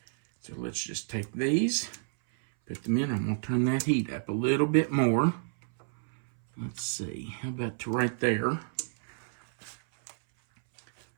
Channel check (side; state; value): left; silent; 58 dB below the other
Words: So let's just take these, put them in. I'm going to turn that heat up a little bit more. Let's see, how about to right there?